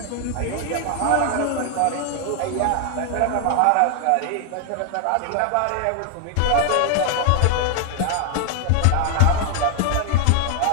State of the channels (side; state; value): both; different; correlation 0.00